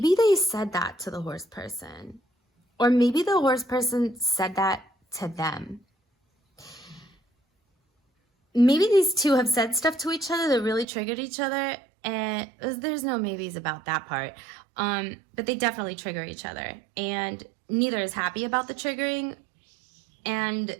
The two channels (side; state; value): left; drops out; at 10.9 s